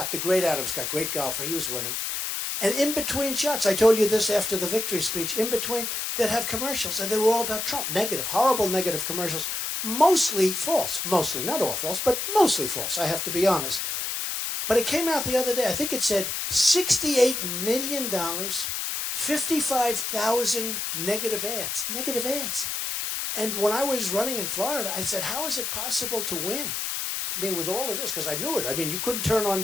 the great Adam Scott, great golfer, he was winning. And in between shots, I told you this after the victory speech, in between, they'd have commercials, and they were all about Trump. Negative, horrible negative commercials. Mostly false. Mostly, not all false, but mostly false, I have to be honest. But it came out the other day. I think it said $68 million, 55,000 negative ads. Negative ads. And when I was running in Florida, I said, how is it possible to win? I mean, with all of this, because I knew it. I mean, you couldn't turn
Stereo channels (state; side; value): noise; left; hiss, 2 dB below the sound